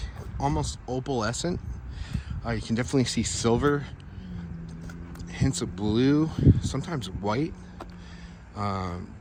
almost opalescent. You can definitely see silver, hints of blue, sometimes white.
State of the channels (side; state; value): both; identical; correlation 1.00